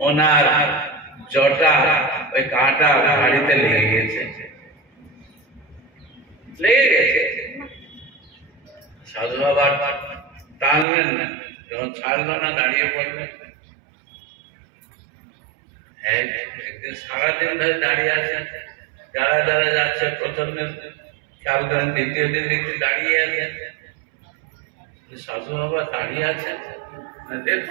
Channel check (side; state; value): left; drops out; at 10.9 s